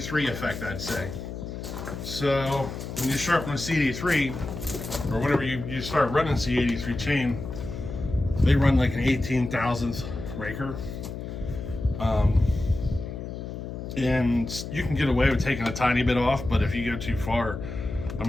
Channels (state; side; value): noise; left; hum, 8 dB below the sound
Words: effect, I'd say. So when you sharpen a C83, or whenever you start running C83 chain, they run like an 18,000th raker. And you can get away with taking a tiny bit off, but if you go too far, I